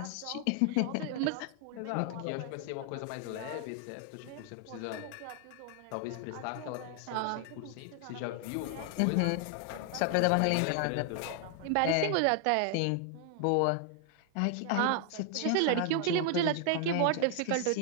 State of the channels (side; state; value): both; different; correlation 0.00